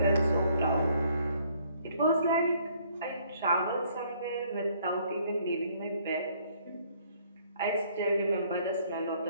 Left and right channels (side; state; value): both; inverted; correlation -0.64